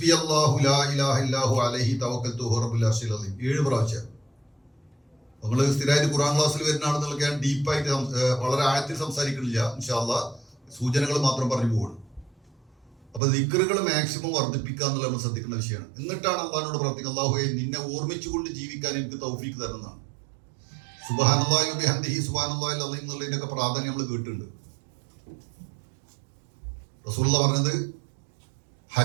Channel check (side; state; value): left; drops out; at 13.2 s